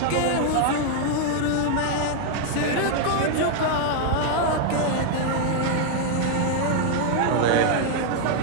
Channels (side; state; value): both; different; correlation 0.00